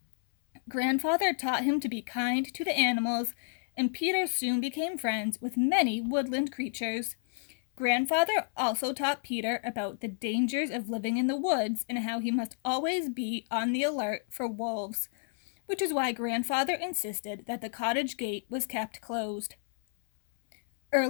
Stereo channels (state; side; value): silent; right; digital silence